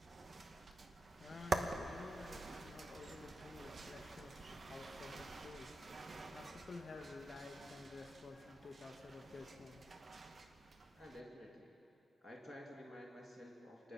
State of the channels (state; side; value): normal; both; correlation 0.89